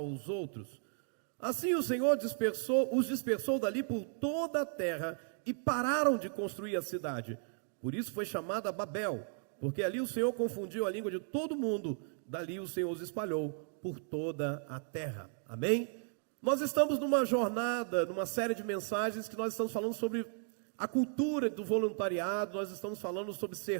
outros. Assim o Senhor os dispersou dali por toda a terra, e pararam de construir a cidade. Por isso foi chamada Babel, porque ali o Senhor confundiu a língua de todo mundo. Dali o Senhor os espalhou por toda a terra. Amém? Nós estamos numa jornada, numa série de mensagens que nós estamos falando sobre a cultura do voluntariado. Nós estamos falando sobre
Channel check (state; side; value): silent; left; 54 dB below the other